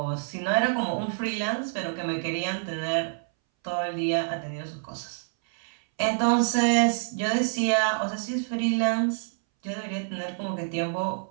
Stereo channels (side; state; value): left; silent; 60 dB below the other